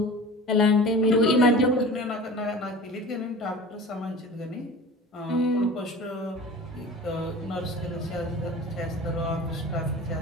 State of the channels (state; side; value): normal; both; correlation 0.38